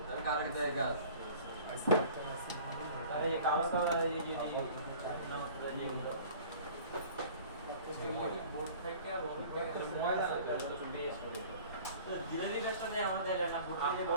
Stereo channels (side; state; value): both; inverted; correlation -0.47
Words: আমি কার আগে দেয় গাছ আরে এই কালো কালার এই যে না বোর্ড থেকে ময়লা একটু বেশ করে তো ধীরে ধীরে সাথে আমাদের না বোর্ড থেকে